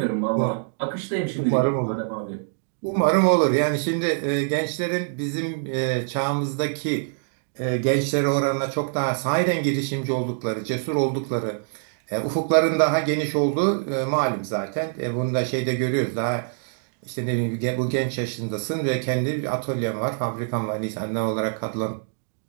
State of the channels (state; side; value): silent; left; digital silence